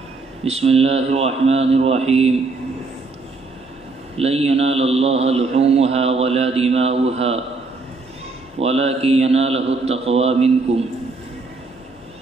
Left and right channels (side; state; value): left; quieter; 3.8 dB